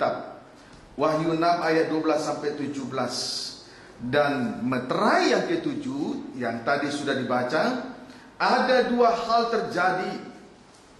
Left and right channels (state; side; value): identical; both; correlation 1.00